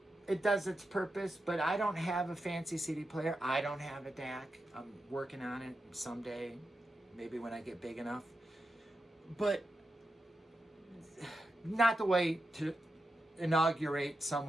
it does its purpose, but I don't have a fancy CD player. I don't have a DAC. I'm working on it someday, maybe when I get big enough. But not the way to inaugurate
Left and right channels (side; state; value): both; normal; correlation 0.88